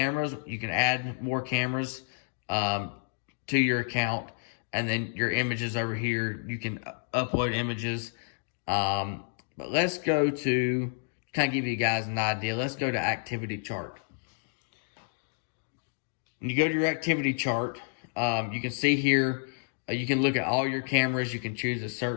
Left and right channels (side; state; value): right; silent; digital silence